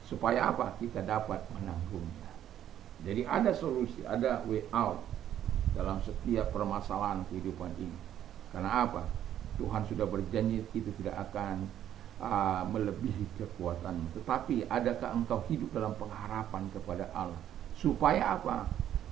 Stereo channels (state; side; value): quieter; left; 11.0 dB